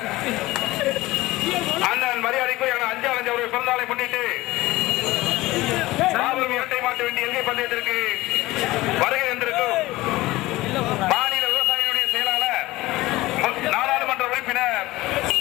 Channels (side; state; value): right; quieter; 18.8 dB